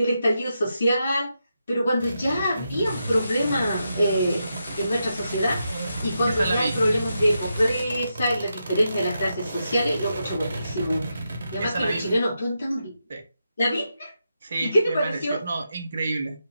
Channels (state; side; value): inverted; both; correlation -0.85